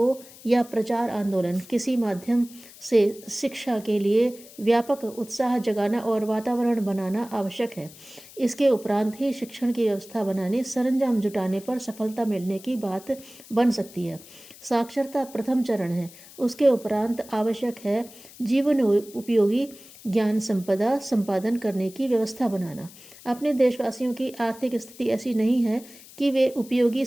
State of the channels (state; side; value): noise; left; hiss, 20 dB below the sound